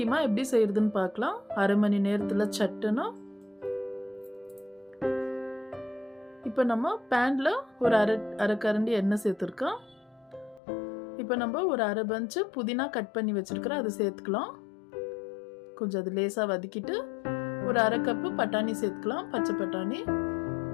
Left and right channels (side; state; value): right; drops out; at 10.6 s